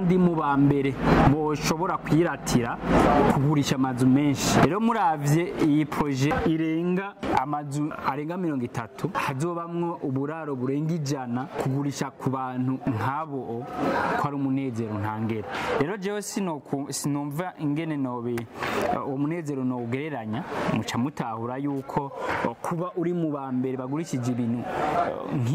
mu bambere boshobora kwiratira kugurisha amazu menshi. Rero muravye iyi projet irenga amazu arenga 30, hazobamwo uburaro burenga 100, kugurisha ku bantu nk'abo ko ari umunezero ntangere. Rero jewe sinumva ingene nobe umunezero no ugereranya, muca mutahura yuko kuba uri mu bambere bagurishije ibintu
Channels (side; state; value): both; identical; correlation 1.00